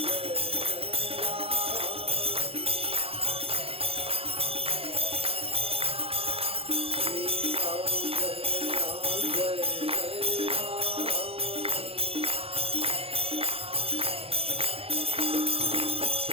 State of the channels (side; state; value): left; late; 0.28 ms